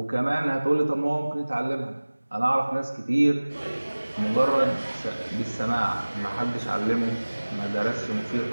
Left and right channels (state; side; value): inverted; both; correlation -1.00